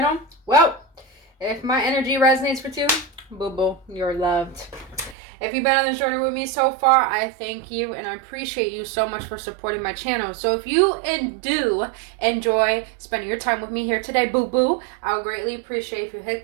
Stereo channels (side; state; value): left; drops out; at 5.2 s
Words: well, if my energy resonates with you, boo-boo, you're loved. If you've been on this journey with me so far, I thank you and I appreciate you so much for supporting my channel. So if you do enjoy spending your time with me here today, boo-boo, I would greatly appreciate if you hit